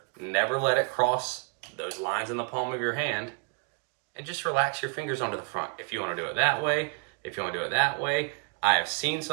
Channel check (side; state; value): left; quieter; 36.0 dB